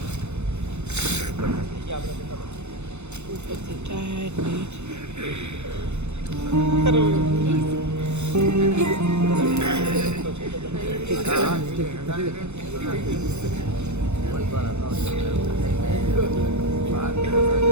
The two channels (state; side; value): late; left; 0.82 ms